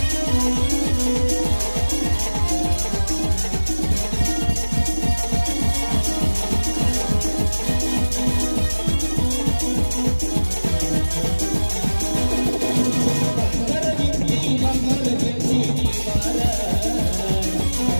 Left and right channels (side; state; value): both; inverted; correlation -1.00